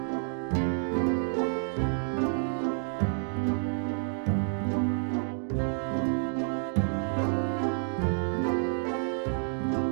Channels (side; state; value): left; silent; digital silence